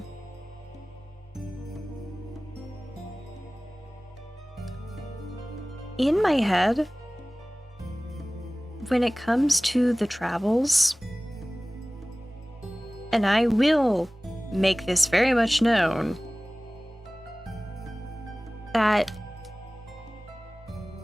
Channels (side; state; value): both; normal; correlation 0.98